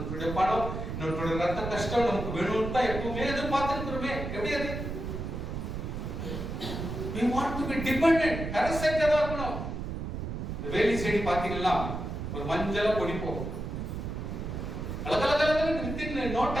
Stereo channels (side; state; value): right; noise; rumble, 5 dB below the sound